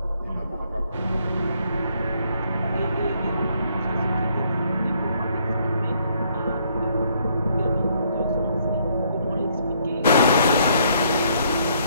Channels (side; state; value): both; inverted; correlation -0.68